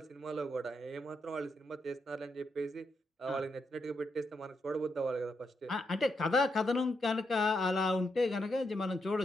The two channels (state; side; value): normal; both; correlation 0.81